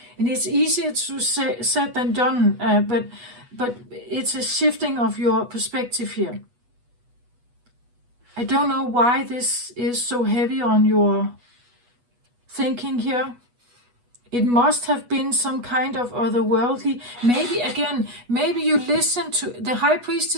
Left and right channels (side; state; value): left; late; 8.2 ms